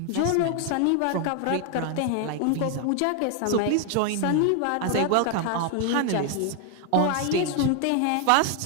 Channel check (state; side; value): different; both; correlation 0.00